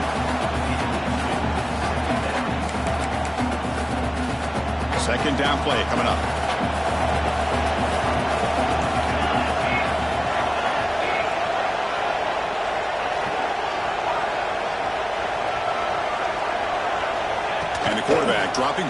Second down play coming up. And the quarterback dropping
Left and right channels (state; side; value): identical; both; correlation 1.00